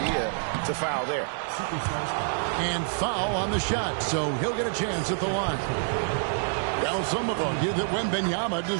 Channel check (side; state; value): left; silent; digital silence